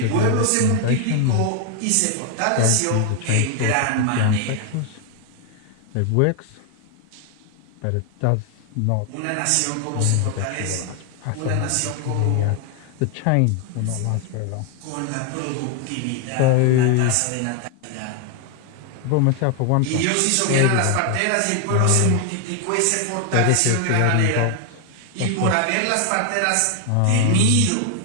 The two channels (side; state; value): both; different; correlation 0.00